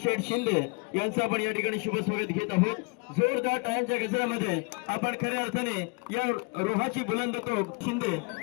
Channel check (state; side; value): quieter; right; 31.3 dB